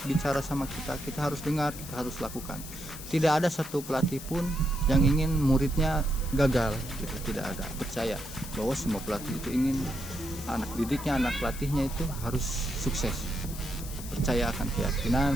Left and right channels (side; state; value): left; noise; hiss, 12 dB below the sound